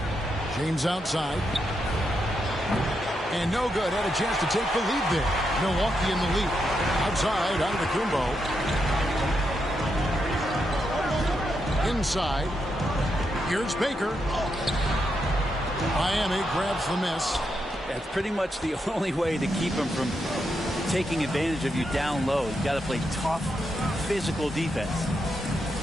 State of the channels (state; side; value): normal; both; correlation 0.83